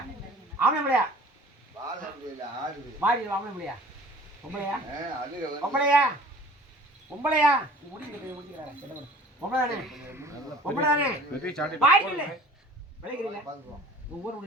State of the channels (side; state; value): both; normal; correlation 0.47